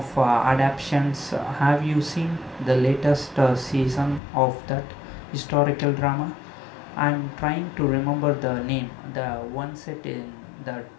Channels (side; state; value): right; drops out; at 4.2 s